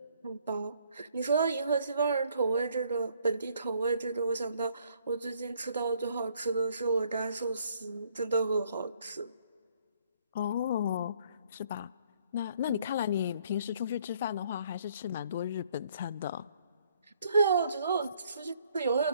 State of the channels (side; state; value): both; inverted; correlation -0.65